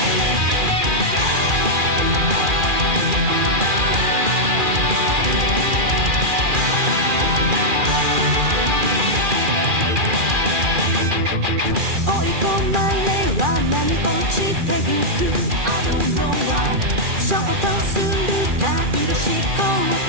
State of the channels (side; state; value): left; late; 2.4 ms